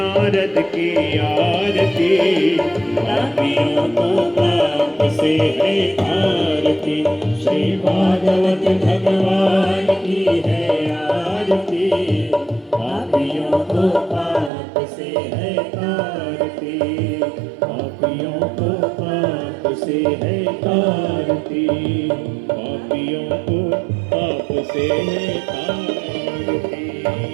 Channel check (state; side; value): drops out; left; at 14.5 s